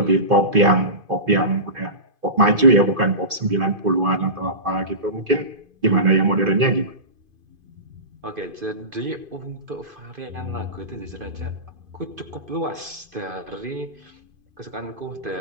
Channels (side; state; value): left; late; 2.5 ms